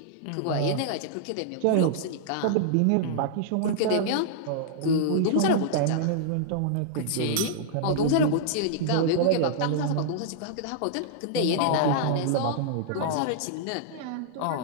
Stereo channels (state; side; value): different; both; correlation -0.01